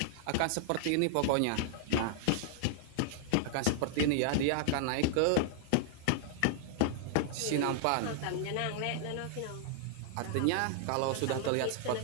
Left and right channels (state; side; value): different; both; correlation 0.00